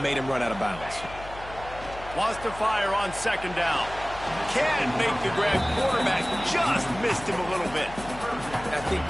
made him run out of bounds. Wants to fire on second down. Can't make the grab. Quarterback just missed him a little bit. I think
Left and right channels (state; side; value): noise; left; hum, 15 dB below the sound